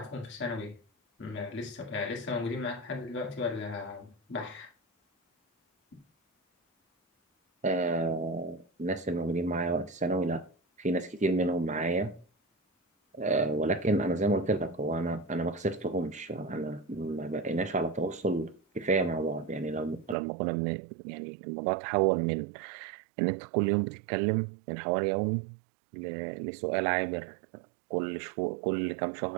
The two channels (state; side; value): drops out; left; at 20.2 s